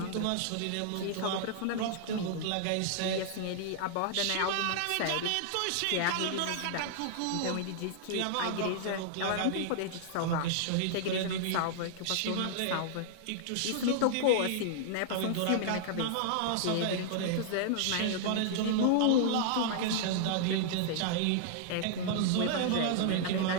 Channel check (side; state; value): both; different; correlation -0.01